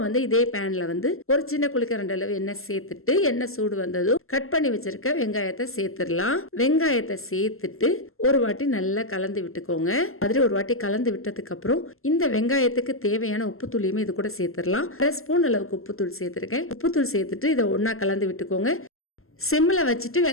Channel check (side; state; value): right; late; 0.62 ms